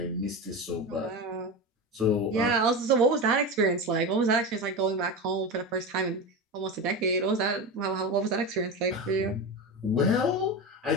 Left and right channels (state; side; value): normal; both; correlation 0.21